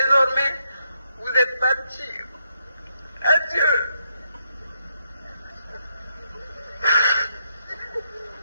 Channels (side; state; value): both; inverted; correlation -0.78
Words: vous êtes parti. Adieu.